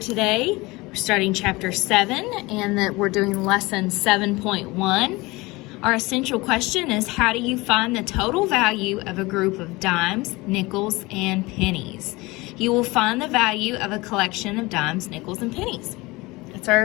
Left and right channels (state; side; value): quieter; right; 22.5 dB